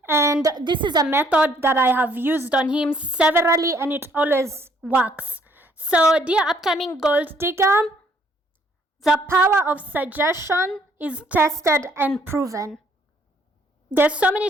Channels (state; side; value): normal; both; correlation 0.65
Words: and this is a method that I have used on him severally, and it always works. So, dear upcoming gold digger, the power of suggestion is tested and proven. There's so many